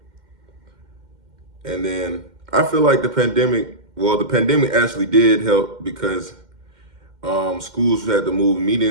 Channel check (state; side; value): late; left; 2.1 ms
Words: And then I feel like the pandemic actually did help because schools had to move